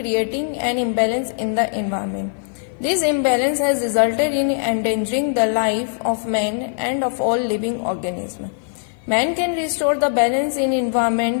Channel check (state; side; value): silent; right; 55 dB below the other